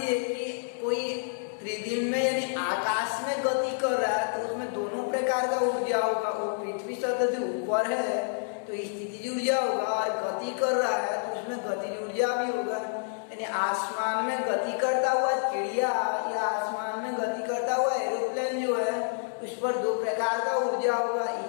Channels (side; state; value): right; silent; 58 dB below the other